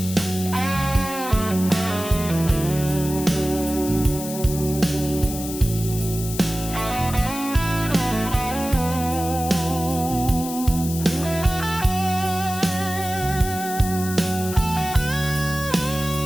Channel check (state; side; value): noise; left; hiss, 9 dB below the sound